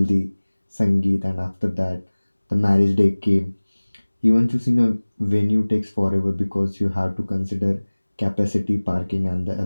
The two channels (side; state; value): both; inverted; correlation -1.00